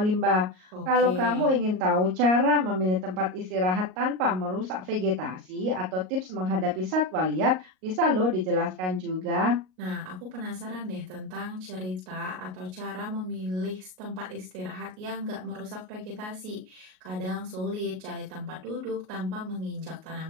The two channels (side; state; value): left; late; 38 ms